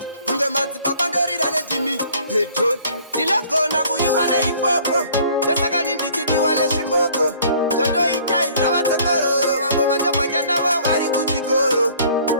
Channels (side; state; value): both; inverted; correlation -0.54